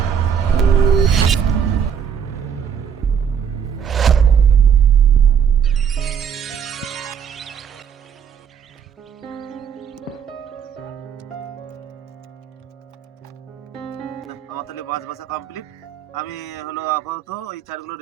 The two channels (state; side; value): quieter; left; 7.6 dB